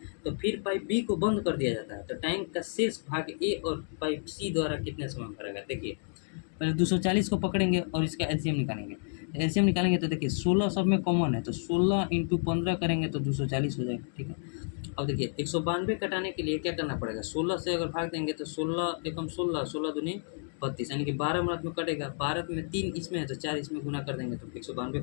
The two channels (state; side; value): silent; right; digital silence